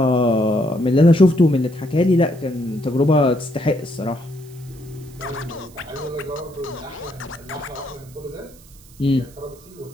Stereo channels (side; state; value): right; noise; hiss, 25 dB below the sound